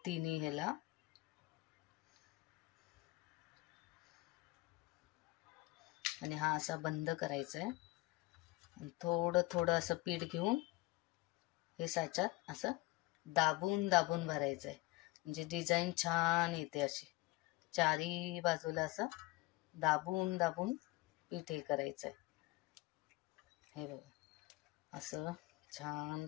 तिन्ही ह्याला. आणि हा असा बंद करायचा आहे. आणि थोडं थोडं असं पीठ घेऊन हे साच्यात असं दाबून दाबून भरायचं आहे, म्हणजे डिझाईन छान येते. अशी चारी बाजूला असं दाबून दाबून पीठ हे करायचं आहे. हे बघा, असं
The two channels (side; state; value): right; quieter; 20.9 dB